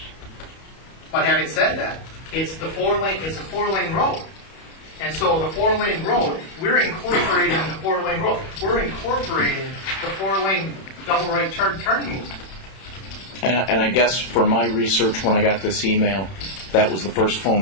But having said that, it's a 4-lane road. And so the 4-lane road, we're incorporating the 4-lane road. We're incorporating the 4-lane double right turning movement. And I guess for my research, when I got this email, that was the first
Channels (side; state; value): right; late; 31 ms